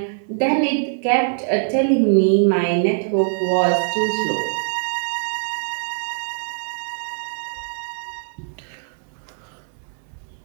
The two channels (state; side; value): silent; left; digital silence